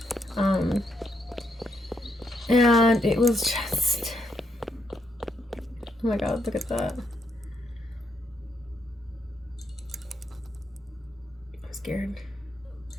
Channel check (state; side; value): normal; both; correlation 0.78